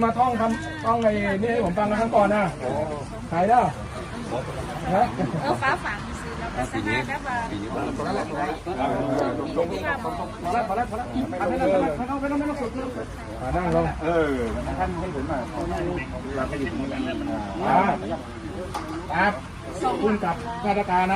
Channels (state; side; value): identical; both; correlation 1.00